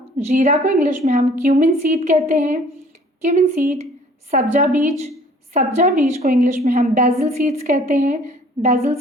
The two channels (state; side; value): normal; both; correlation 0.54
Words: जीरा को इंग्लिश में हम क्यूमिन सीड कहते हैं। Cumin seed. सब्जा बीज, सब्जा बीज को इंग्लिश में हम बेसिल सीड्स कहते हैं। BECIL